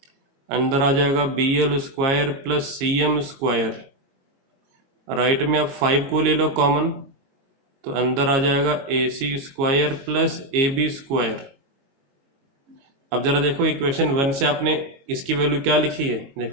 अंदर आ जाएगा B L square plus C M square. Right में आप 5 को ले लो कॉमन, तो अंदर आ जाएगा A C square plus A B square. अब जरा देखो इक्वेशन 1 से आपने इसकी वैल्यू क्या लिखी है?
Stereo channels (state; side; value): late; left; 22 ms